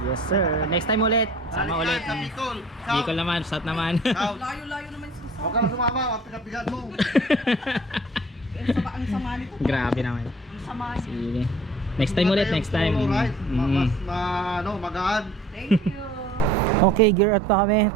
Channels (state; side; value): normal; both; correlation 0.50